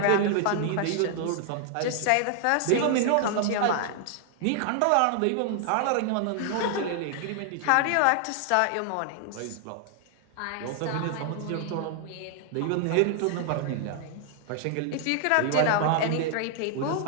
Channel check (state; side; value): different; both; correlation 0.00